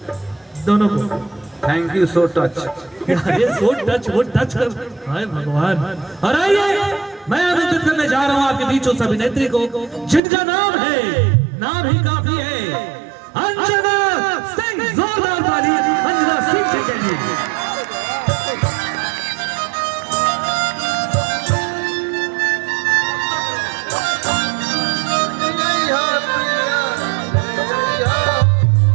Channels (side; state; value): left; drops out; at 10.2 s